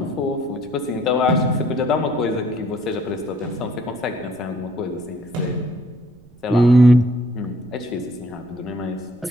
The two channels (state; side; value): noise; right; rumble, 27 dB below the sound